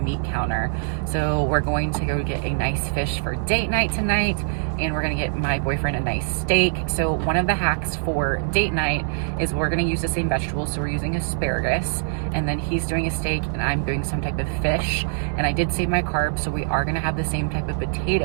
counter. So we're going to go get a nice fish for date night tonight, and we're gonna get my boyfriend a nice steak. So one of the hacks for date night is we're gonna use the same vegetables. So we're using asparagus, and then he's doing a steak and I'm doing some type of fish. And I did save my carbs, so we are gonna have the same type of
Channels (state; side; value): silent; left; digital silence